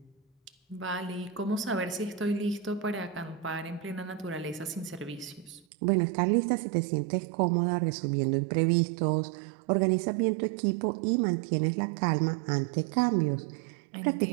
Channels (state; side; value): drops out; left; at 5.7 s